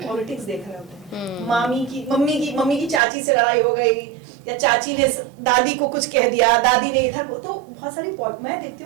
पॉलिटिक्स देख रहे होते हैं, मम्मी की चाची से लड़ाई हो गई, या चाची ने दादी को कुछ कह दिया, दादी ने इधर, तो बहुत सारी मैं देखती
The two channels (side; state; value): left; drops out; at 3.0 s